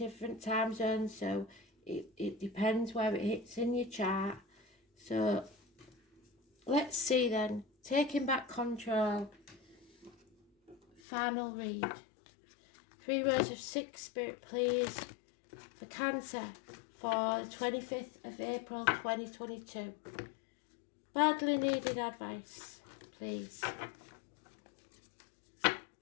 time zones, so it depends where it hits in your chart. So let's see then. Taking back control. Final read. 3 rows of 6, Spirit, please. For Cancer for the 25th of April 2022. Badly needed advice, please. I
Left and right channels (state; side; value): drops out; right; at 11.0 s